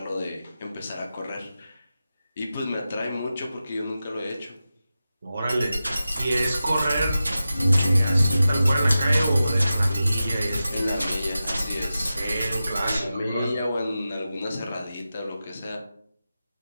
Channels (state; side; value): inverted; both; correlation -0.93